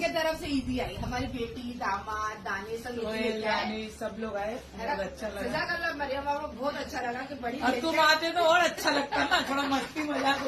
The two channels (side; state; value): both; identical; correlation 1.00